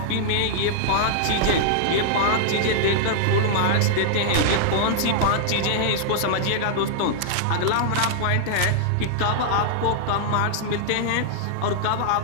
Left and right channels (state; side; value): different; both; correlation -0.01